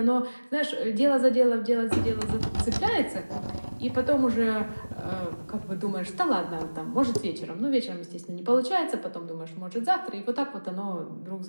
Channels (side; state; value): both; inverted; correlation -1.00